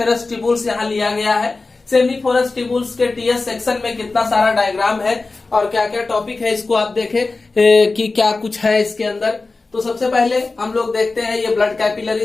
ट्यूबुल्स यहाँ लिया गया है। सेमनीफेरस ट्यूबुल्स के टीएस सेक्शन में कितना सारा डायग्राम है और क्या क्या टॉपिक है इसको आप देखें कि क्या कुछ है इसके अंदर। तो सबसे पहले हम लोग देखते हैं ये ब्लड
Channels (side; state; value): right; quieter; 3.7 dB